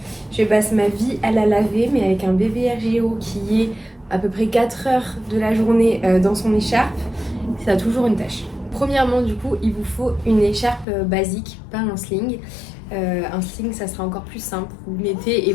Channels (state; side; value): drops out; right; at 10.9 s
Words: Je passe ma vie à la laver, mais avec un bébé RGO qui est à peu près 4 heures de la journée dans son écharpe, ça a toujours une tache. Premièrement du coup il vous faut une écharpe basique, pas un sling. Un sling ça sera encore plus simple, vous le mettez et